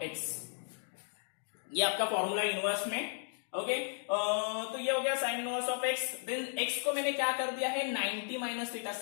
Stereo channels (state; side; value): silent; right; 55 dB below the other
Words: x, ये आपका फॉर्मूला इनवर्स में। ओके, तो ये हो गया sine inverse of x. Then x को मैंने क्या कर दिया है, 90 minus theta,